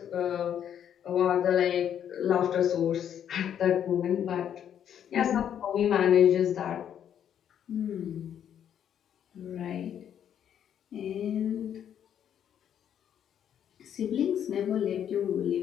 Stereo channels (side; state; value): right; quieter; 9.4 dB